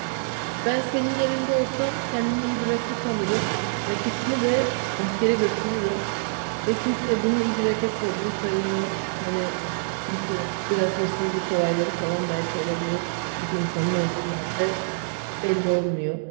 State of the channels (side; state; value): left; silent; digital silence